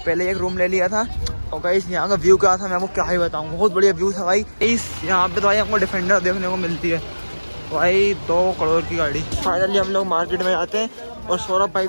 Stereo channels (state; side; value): inverted; both; correlation -1.00